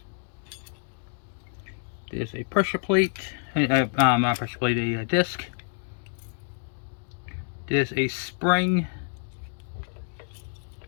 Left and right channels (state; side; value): silent; right; 59 dB below the other